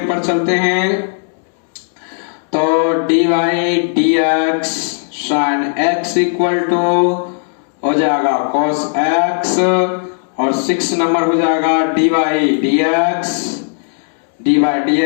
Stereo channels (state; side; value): silent; right; 69 dB below the other